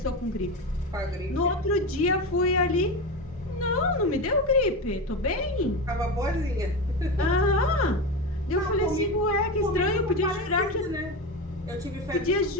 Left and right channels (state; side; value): normal; both; correlation 0.19